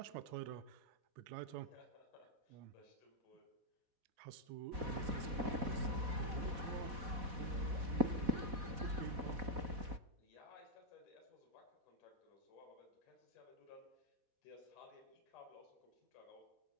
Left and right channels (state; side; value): late; left; 4.1 ms